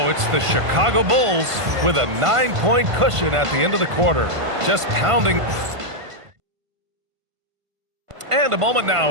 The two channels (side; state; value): left; late; 1.5 ms